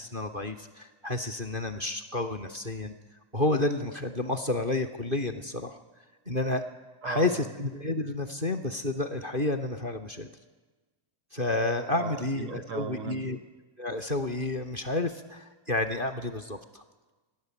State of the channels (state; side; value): late; left; 2.5 ms